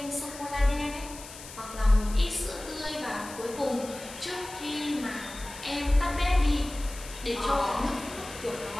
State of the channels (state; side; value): noise; left; hiss, 14 dB below the sound